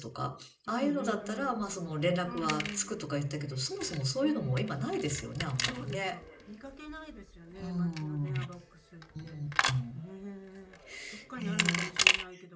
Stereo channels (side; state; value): both; identical; correlation 1.00